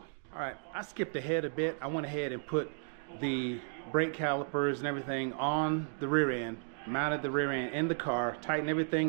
All right, I skipped ahead a bit. I went ahead and put the brake calipers and everything on the rear end, mounted the rear end in the car, tightened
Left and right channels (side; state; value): left; silent; 55 dB below the other